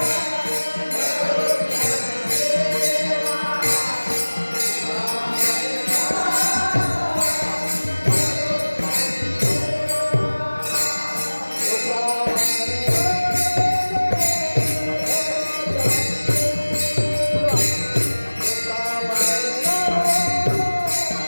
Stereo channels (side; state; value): both; inverted; correlation -1.00